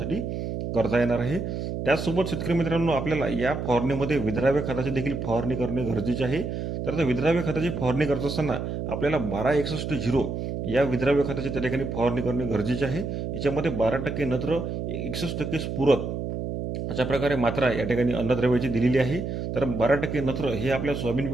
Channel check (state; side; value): noise; right; hum, 4 dB below the sound